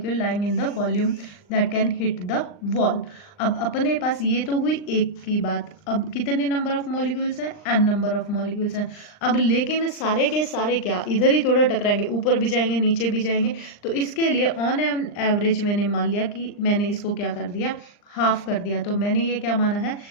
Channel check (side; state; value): right; late; 39 ms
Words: lying in the volume that can hit the wall. अब अपने पास ये तो हुई एक की बात। अब कितने नंबर ऑफ मॉलिक्यूल्स हैं, n नंबर ऑफ मॉलिक्यूल्स हैं। अब लेकिन सारे के सारे क्या इधर ही थोड़ा टकराएंगे, ऊपर भी जाएंगे नीचे भी जाएंगे। तो इसके लिए ऑन एन एवरेज मैंने मान लिया कि मैंने इसको क्या कर दिया, हाफ कर दिया। तो मैंने ये क्या माना है,